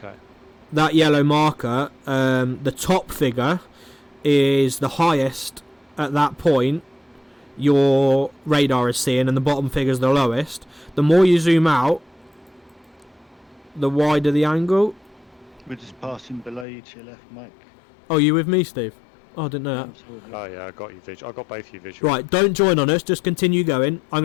That yellow marker, the top figure is the highest at that point your radar is seeing, and the bottom figure is the lowest. The more you zoom out, the wider the angle. We're just passing below you to your left, Mike. Oh, you with me, Steve? Oh, I didn't know that. Absolutely. Oh yeah, I got you visual. I got both you visual. Right, don't join on us, just continue going. I'm going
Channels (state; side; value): drops out; right; at 16.7 s